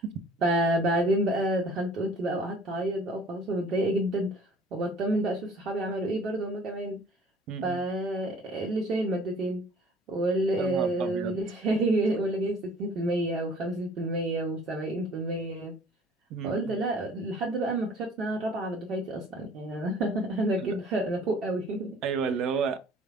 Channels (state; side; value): normal; both; correlation 0.52